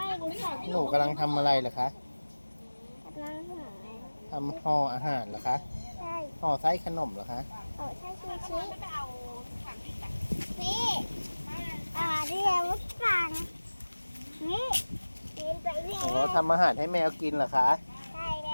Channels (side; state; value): both; inverted; correlation -1.00